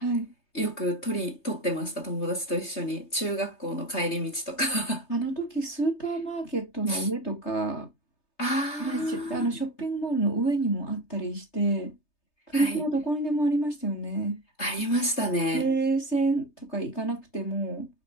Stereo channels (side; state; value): right; late; 3.3 ms